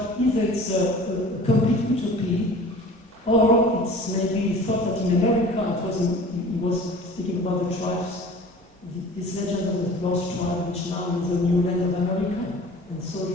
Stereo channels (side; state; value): both; normal; correlation 0.43